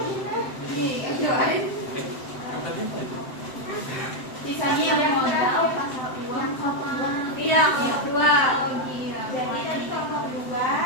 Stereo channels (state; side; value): late; right; 7.8 ms